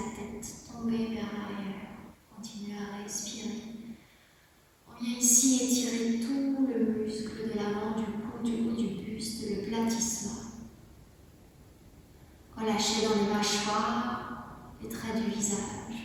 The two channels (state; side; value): identical; both; correlation 1.00